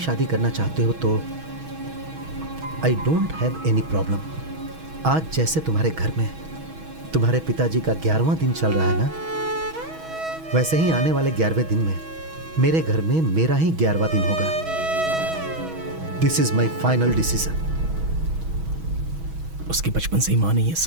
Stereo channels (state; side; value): late; left; 6.2 ms